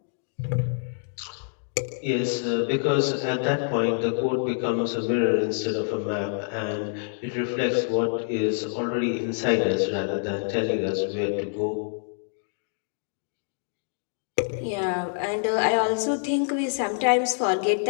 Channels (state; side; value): silent; right; 61 dB below the other